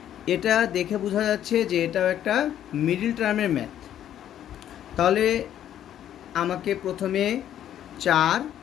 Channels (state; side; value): quieter; right; 10.9 dB